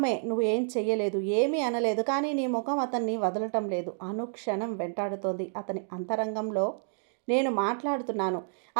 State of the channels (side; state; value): left; silent; digital silence